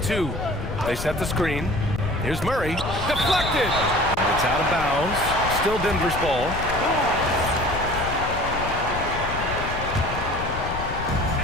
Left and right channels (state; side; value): noise; left; rumble, 7 dB below the sound